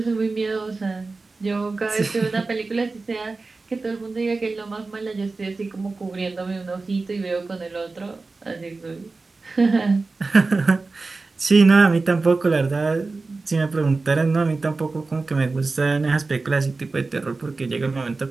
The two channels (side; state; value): left; quieter; 3.7 dB